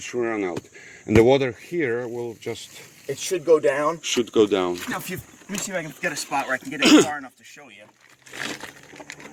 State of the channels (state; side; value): identical; both; correlation 1.00